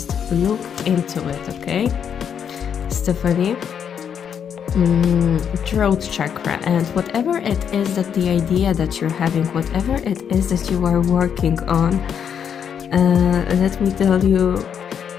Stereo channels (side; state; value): right; quieter; 7.9 dB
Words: look into it, okay? Stephanie? Throat chakra, and whatever it is that the idea that you're having, whatever it is that you are working on, let me tell you,